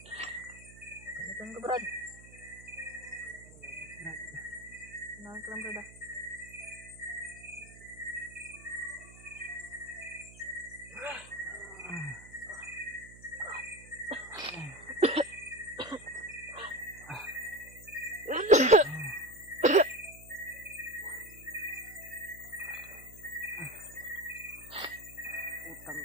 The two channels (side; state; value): right; noise; hum, 19 dB below the sound